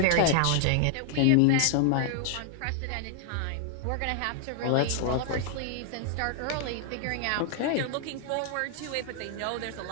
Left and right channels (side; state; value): both; different; correlation -0.01